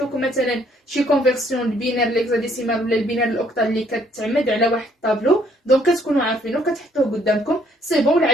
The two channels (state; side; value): normal; both; correlation 0.65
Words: مثلا شي كونفيرسيون البينار ليكزاديسيمال ولا البينار الاوكتال اللي كتعمد على واحد الطابلو. دونك كتكونوا عارفينه كتحطوه قدامكم سي بون.